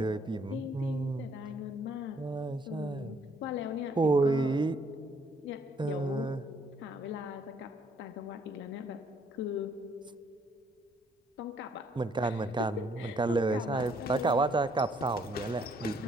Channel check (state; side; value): normal; both; correlation 0.66